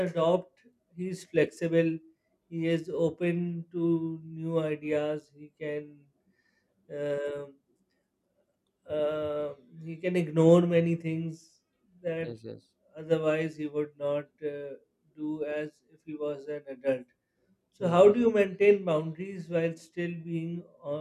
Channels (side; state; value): both; identical; correlation 1.00